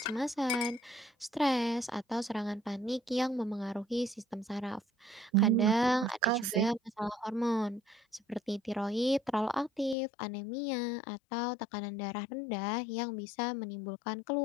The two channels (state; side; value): drops out; right; at 10.0 s